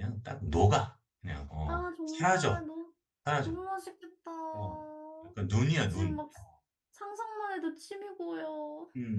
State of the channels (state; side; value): identical; both; correlation 1.00